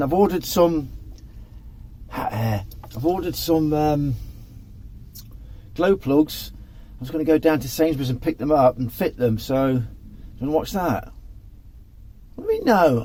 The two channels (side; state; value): both; identical; correlation 1.00